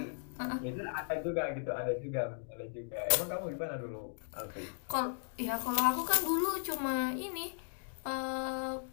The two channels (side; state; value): right; silent; digital silence